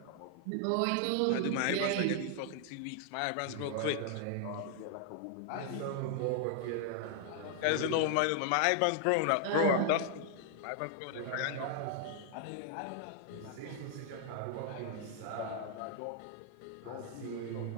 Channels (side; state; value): both; different; correlation 0.00